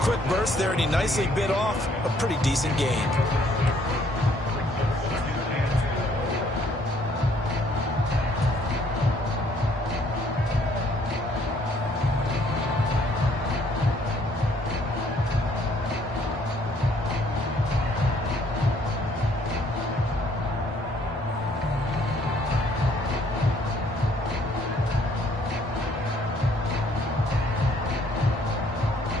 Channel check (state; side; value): normal; both; correlation 0.64